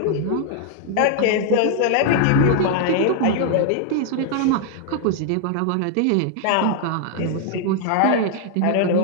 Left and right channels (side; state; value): both; different; correlation 0.00